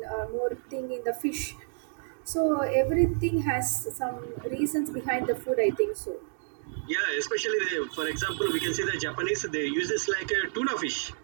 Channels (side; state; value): left; silent; digital silence